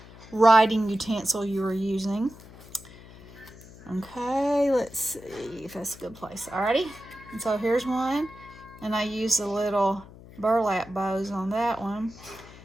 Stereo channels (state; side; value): noise; left; hum, 19 dB below the sound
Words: writing utensil you were using. Okay, let's see if that's a good place. Alrighty, and so here's one, and I used the little burlap bows on that one,